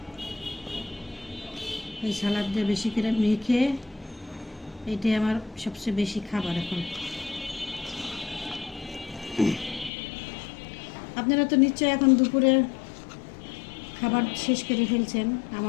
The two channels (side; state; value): right; drops out; at 9.9 s